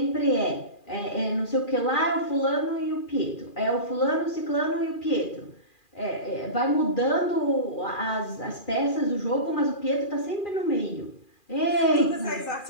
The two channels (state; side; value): late; right; 2.4 ms